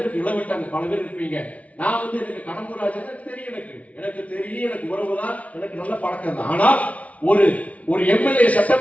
இளவட்டாங்க பல பேர் இருப்பீங்க. நான் வந்து எனக்கு கடம்பூராஜன் தெரியும், எனக்கு தெரியும், எனக்கு உறவுதான், எனக்கு நல்ல பழக்கம் தான். ஆனால் ஒரு எம்எல்ஏ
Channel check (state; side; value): late; right; 0.067 ms